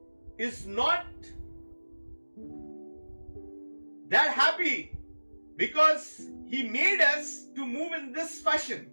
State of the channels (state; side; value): inverted; both; correlation -1.00